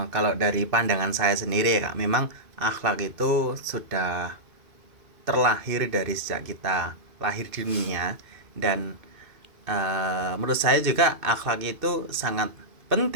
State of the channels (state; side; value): late; left; 2.6 ms